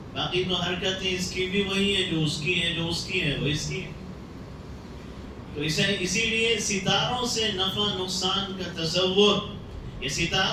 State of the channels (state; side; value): identical; both; correlation 1.00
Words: باقی تو حرکتیں اس کی بھی وہی ہیں جو اس کی ہیں، جو اس کی ہیں وہ اس کی ہیں. تو اسی لیے ستاروں سے نفع نقصان کا تصور، یہ